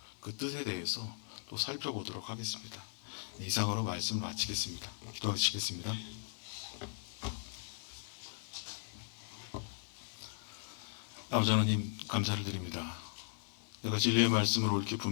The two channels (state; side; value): silent; right; digital silence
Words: 그 뜻에 대해서 또 살펴보도록 하겠습니다. 이상으로 말씀을 마치겠습니다. 기도하시겠습니다. 아버지 하나님 감사를 드립니다. 내가 진리의 말씀을 옳게